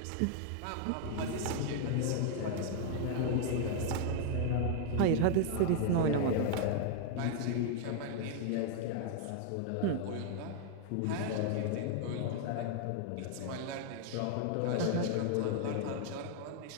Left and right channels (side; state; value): both; different; correlation 0.00